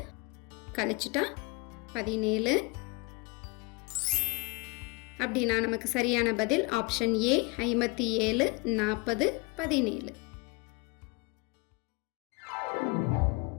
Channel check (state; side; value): quieter; right; 28.1 dB